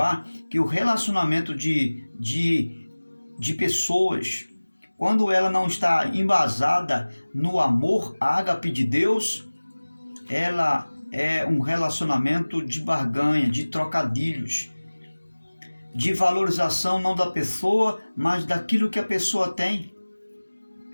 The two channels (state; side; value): inverted; both; correlation -1.00